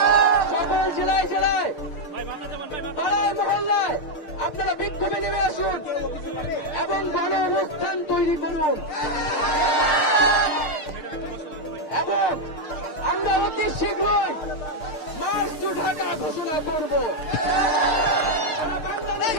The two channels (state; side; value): late; right; 6.6 ms